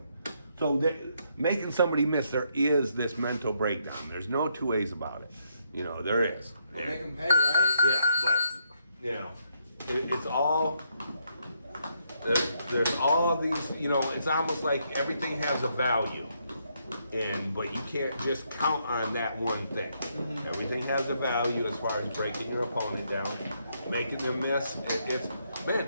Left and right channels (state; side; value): inverted; both; correlation -0.75